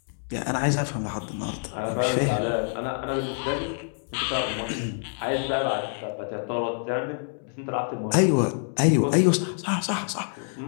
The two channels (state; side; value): silent; right; digital silence